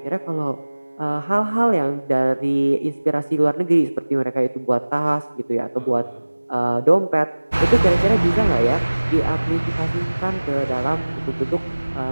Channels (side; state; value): both; inverted; correlation -1.00